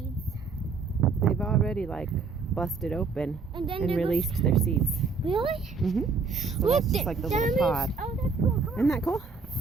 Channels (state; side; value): quieter; left; 4.6 dB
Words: they've already like busted open And then and they're released their seeds. Really? Mm-hmm. So Look, that's just like the that little means- pod. Oh, that's cool. Come on. Isn't that cool?